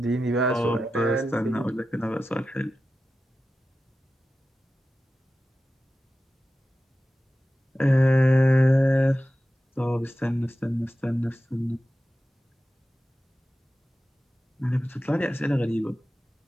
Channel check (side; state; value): both; normal; correlation 0.93